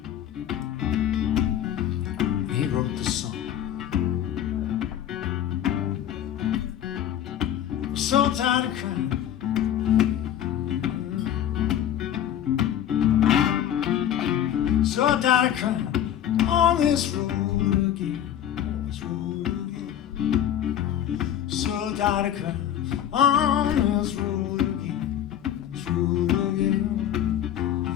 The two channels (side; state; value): right; quieter; 10.7 dB